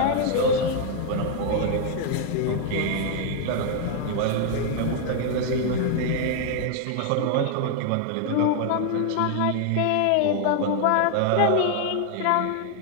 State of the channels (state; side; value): different; both; correlation 0.00